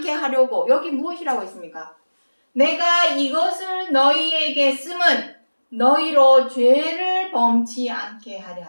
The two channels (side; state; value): both; inverted; correlation -1.00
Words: 하려고. 여기 무엇이라고 했습니까? 내가 이것을 너희에게 쓰면 너희로 죄를 범치 않게 하려